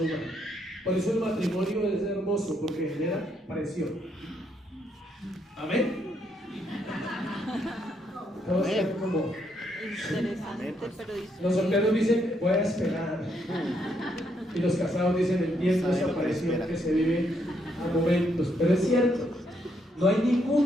humano. Por eso el matrimonio es hermoso, porque genera presión. Amén. Todos están como... Interesante, pero los solteros dicen, voy a esperar. Y los casados dicen, entiendo esa presión que se vive a momentos. Pero es cierto, no hay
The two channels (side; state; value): both; normal; correlation 0.75